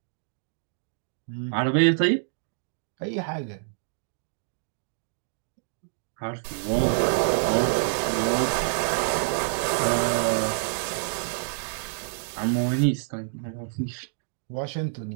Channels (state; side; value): silent; left; digital silence